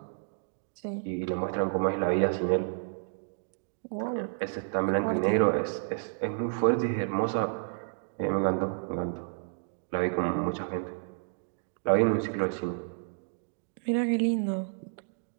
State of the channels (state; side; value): silent; left; digital silence